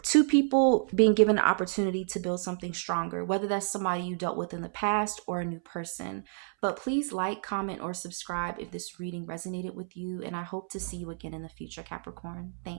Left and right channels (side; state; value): left; silent; 58 dB below the other